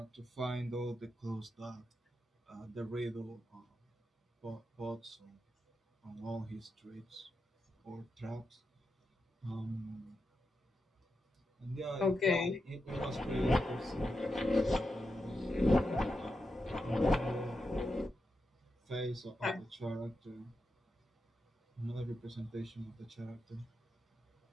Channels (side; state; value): both; normal; correlation 0.87